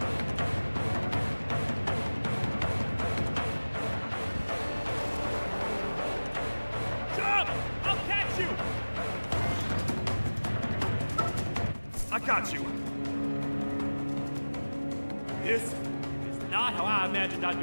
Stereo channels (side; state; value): both; inverted; correlation -1.00